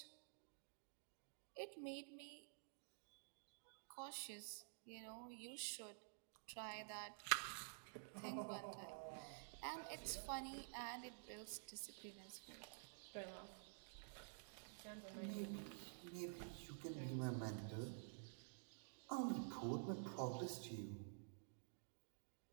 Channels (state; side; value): silent; left; digital silence